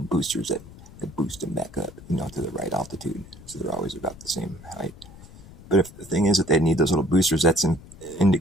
boosters that boost them back up, you know, to the right altitude. So they're always about the same height. But if the thing is that they need those little boosters, that's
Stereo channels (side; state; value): left; noise; rumble, 19 dB below the sound